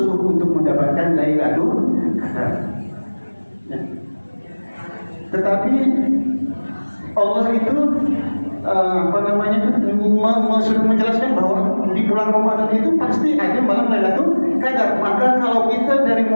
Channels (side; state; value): both; inverted; correlation -1.00